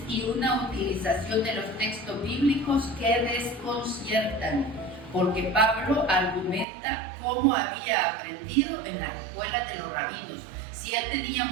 y una utilización de los textos bíblicos que desconciertan, porque Pablo argumenta cómo había aprendido en las escuelas de los rabinos. Si él tenía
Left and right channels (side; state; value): left; drops out; at 6.7 s